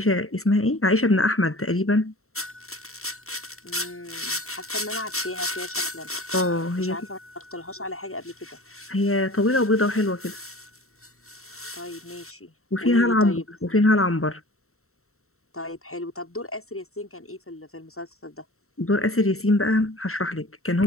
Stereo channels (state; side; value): late; right; 0.63 ms